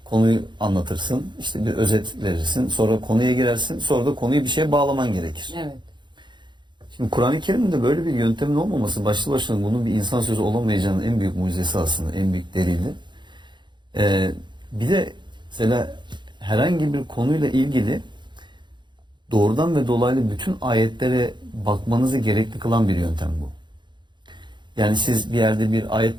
konuyu anlatırsın, işte bir özet verirsin, sonra konuya girersin, sonra da konuyu bir şeye bağlaman gerekir. Evet. Şimdi Kur'an-ı Kerim'de böyle bir yöntemin olmaması başlı başına bunun bir insan sözü olamayacağının en büyük mucizesi aslında, en büyük delili. Bir de mesela herhangi bir konuyla ilgili doğrudan ve dolaylı bütün ayetlere bakmanızı gerekli kılan bir yöntem bu. Yani siz bir yerde bir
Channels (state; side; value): late; left; 0.22 ms